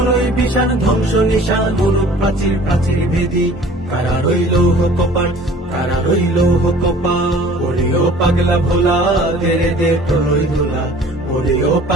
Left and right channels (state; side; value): normal; both; correlation 0.49